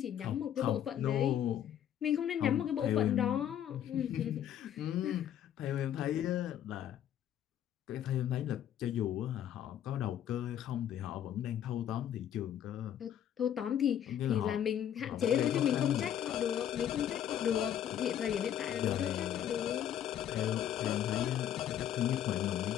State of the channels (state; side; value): quieter; right; 10.2 dB